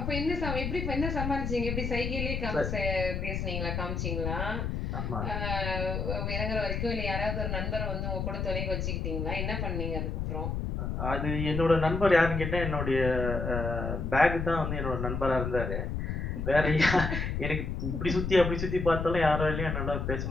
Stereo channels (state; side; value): noise; left; rumble, 2 dB below the sound